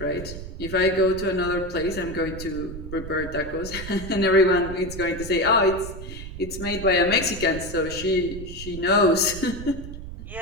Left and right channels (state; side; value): noise; right; rumble, 10 dB below the sound